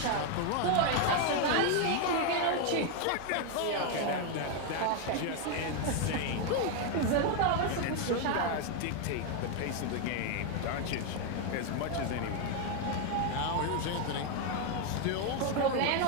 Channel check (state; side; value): different; both; correlation 0.01